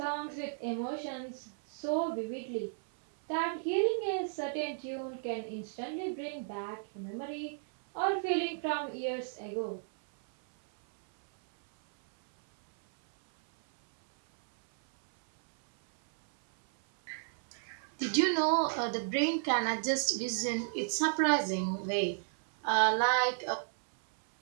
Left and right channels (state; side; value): silent; left; 56 dB below the other